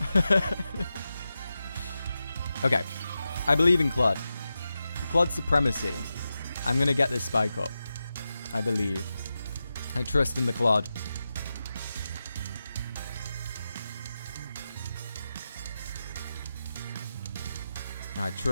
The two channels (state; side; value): inverted; both; correlation -0.91